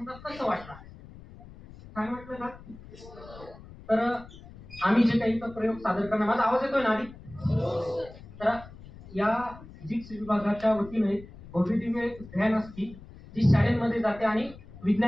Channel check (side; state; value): left; noise; rumble, 18 dB below the sound